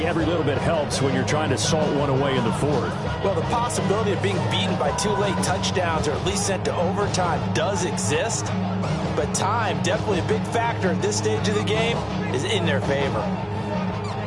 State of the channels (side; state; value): both; identical; correlation 1.00